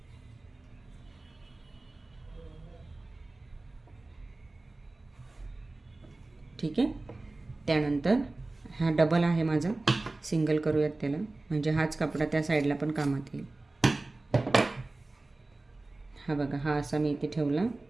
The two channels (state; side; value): quieter; left; 3.0 dB